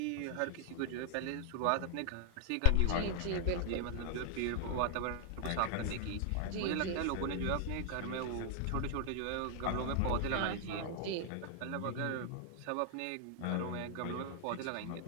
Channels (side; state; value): both; different; correlation 0.00